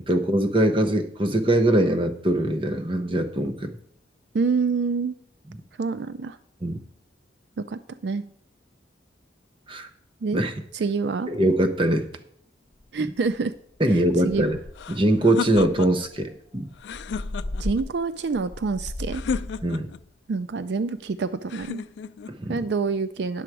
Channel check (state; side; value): normal; both; correlation 0.63